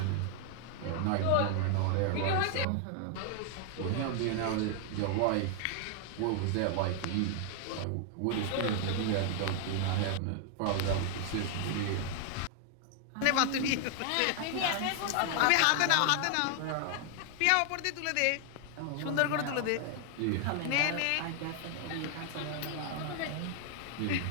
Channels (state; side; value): different; both; correlation 0.00